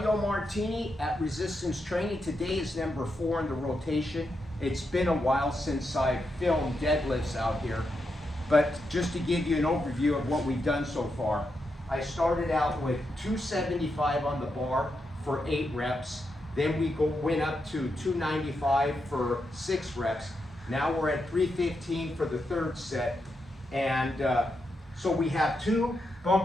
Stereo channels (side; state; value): both; normal; correlation 0.84